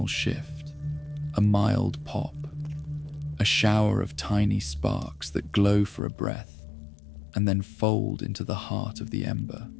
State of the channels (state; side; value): drops out; right; at 6.0 s